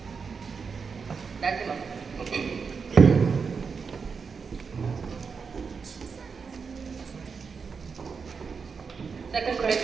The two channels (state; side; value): quieter; left; 5.5 dB